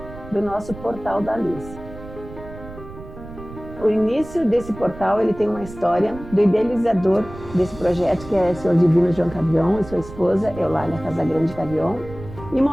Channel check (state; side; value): noise; right; rumble, 15 dB below the sound